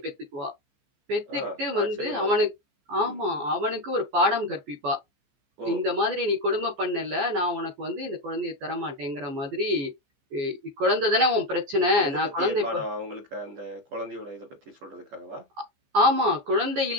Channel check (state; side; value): late; left; 15 ms